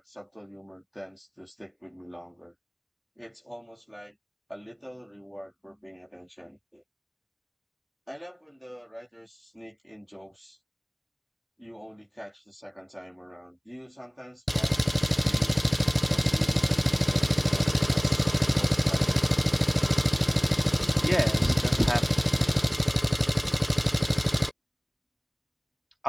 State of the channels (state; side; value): identical; both; correlation 1.00